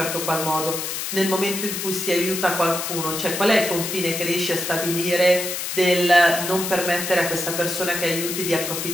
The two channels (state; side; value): noise; left; hiss, 4 dB below the sound